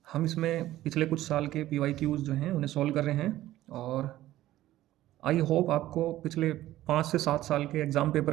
हम इसमें पिछले कुछ साल के पीवाईक्यूज़ जो हैं उन्हें सॉल्व कर रहे हैं और आई होप आपको पिछले 5 से 7 साल के एग्ज़ाम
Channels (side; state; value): left; quieter; 14.8 dB